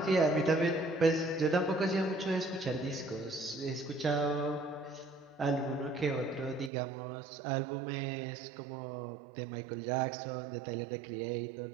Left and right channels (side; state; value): left; drops out; at 6.7 s